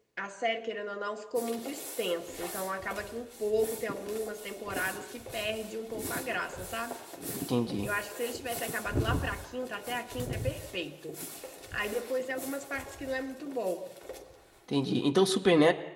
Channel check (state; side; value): identical; both; correlation 1.00